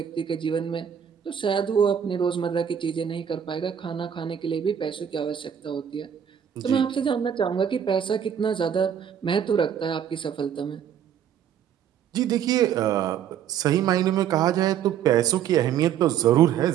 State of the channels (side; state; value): left; quieter; 8.9 dB